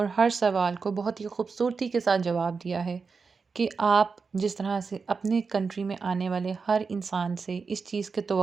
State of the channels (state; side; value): quieter; left; 4.9 dB